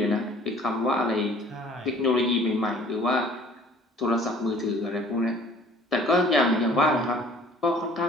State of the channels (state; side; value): normal; both; correlation 0.52